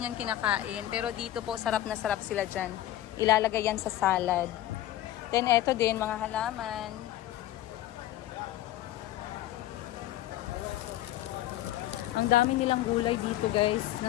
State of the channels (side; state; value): right; quieter; 13.9 dB